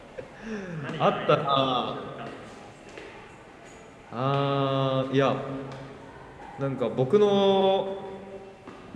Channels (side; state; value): both; identical; correlation 1.00